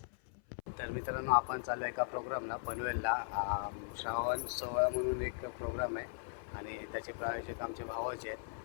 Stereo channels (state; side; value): silent; right; 52 dB below the other